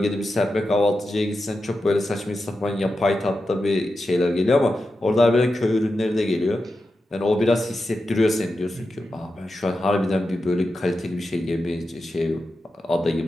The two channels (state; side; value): normal; both; correlation 0.90